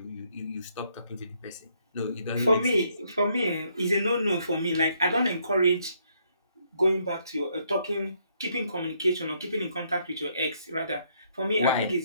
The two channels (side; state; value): both; inverted; correlation -0.71